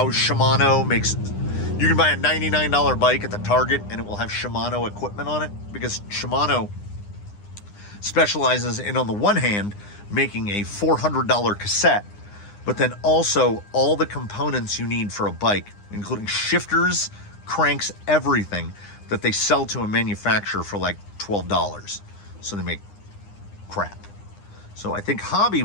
Shimano makes, you can buy a $99 bike at the Target and it will have Shimano equipment on it, because Shimano specializes in, on the one hand, making a $400 cassette, but then also all the components you need for a bike, including shifters, cranks, everything that they sell to a manufacturer for like $12. So they make crap. So I think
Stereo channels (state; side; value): late; right; 9.8 ms